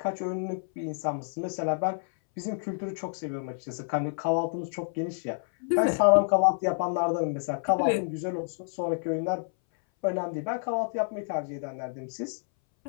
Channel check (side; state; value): right; silent; 59 dB below the other